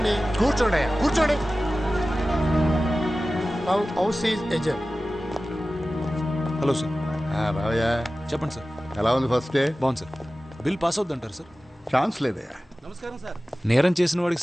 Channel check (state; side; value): normal; both; correlation 0.96